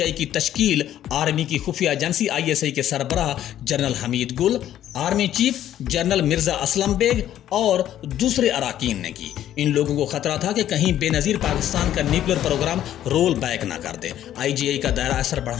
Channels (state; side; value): quieter; right; 11.7 dB